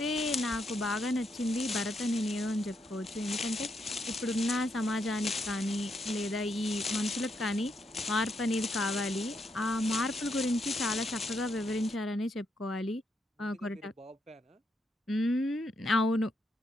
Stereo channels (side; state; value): both; normal; correlation 0.79